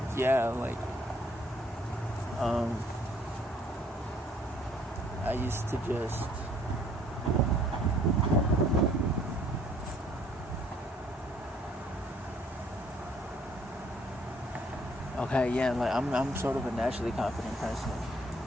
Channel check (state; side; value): normal; both; correlation 0.61